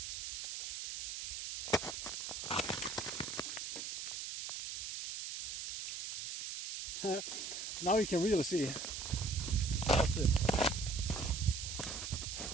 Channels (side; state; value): right; noise; hiss, 5 dB below the sound